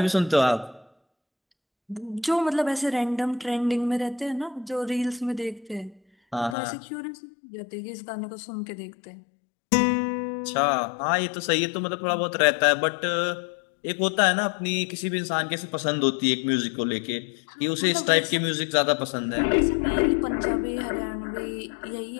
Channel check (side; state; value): right; drops out; at 6.6 s